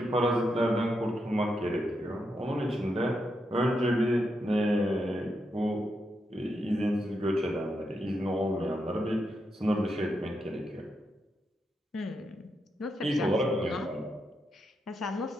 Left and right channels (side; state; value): both; normal; correlation 0.84